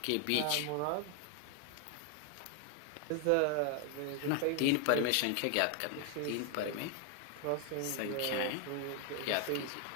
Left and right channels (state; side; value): different; both; correlation 0.00